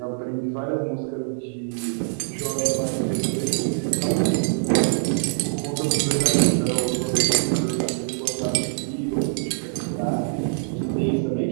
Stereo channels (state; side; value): silent; left; 60 dB below the other